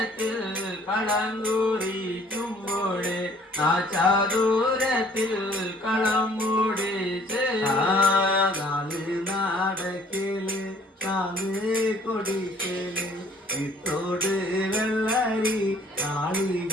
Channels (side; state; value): both; normal; correlation 0.57